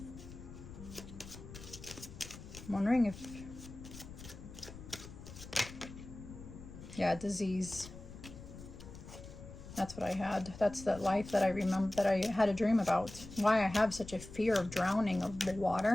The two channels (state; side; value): noise; left; rumble, 14 dB below the sound